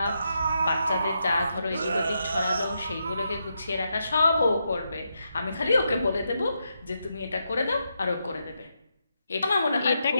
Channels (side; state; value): both; inverted; correlation -0.83